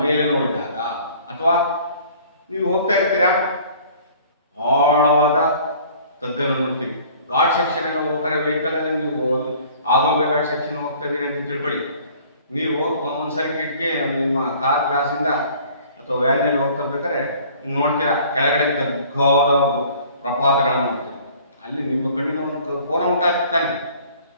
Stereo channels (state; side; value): inverted; both; correlation -0.52